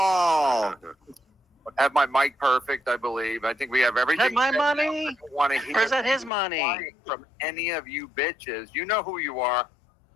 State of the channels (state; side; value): drops out; right; at 6.3 s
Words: Have my mic perfect, I believe. I think we have everything. Is that my money? I don't want to hear Or is that his money? from any of you bitches. You know who you are.